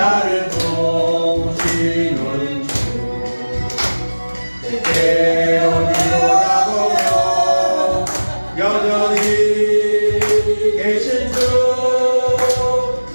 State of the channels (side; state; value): both; inverted; correlation -1.00